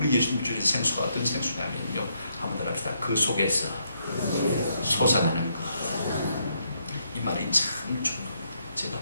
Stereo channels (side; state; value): both; inverted; correlation -0.75